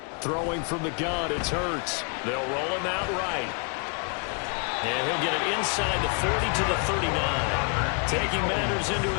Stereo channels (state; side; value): quieter; right; 38.1 dB